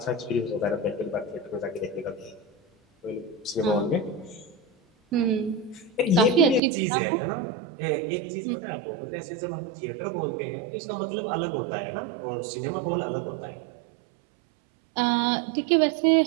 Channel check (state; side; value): drops out; left; at 6.6 s